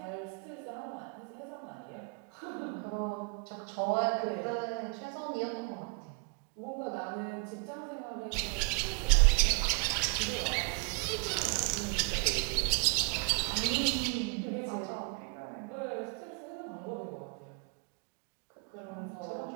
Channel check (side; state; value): left; quieter; 35.3 dB